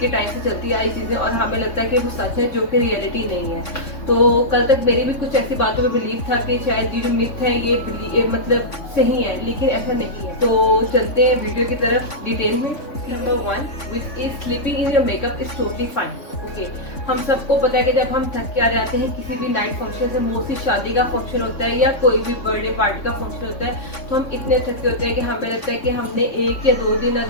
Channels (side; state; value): right; late; 3.5 ms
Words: टाइम से चलती आई चीजें और हमें लगता है कि वो सच है, जो कि रियलिटी नहीं है। तो कल तक मेरी भी कुछ ऐसी बातों में बिलीव था कि शायद ये जो मिथ है ये मतलब सही है, लेकिन ऐसा नहीं है। तो चलते हैं वीडियो की तरफ डिटेल में। Number 1, which is sleeping in your makeup is totally fine. Okay, हम सबको पता है कि जब हम थक के आ जाते हैं किसी भी नाइट फंक्शन से, मोस्टली शादी का फंक्शन होता है या कोई भी बर्थडे पार्टी का फंक्शन होता है, तो हम इतने थके होते हैं कि हमें लगता है कि हमने 1 या 2 दिन